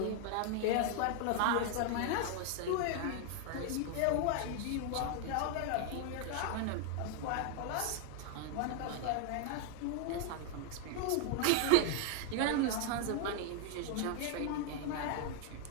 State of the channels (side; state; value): both; different; correlation 0.00